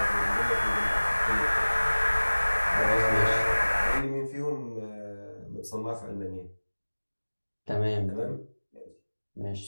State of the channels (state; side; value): inverted; both; correlation -1.00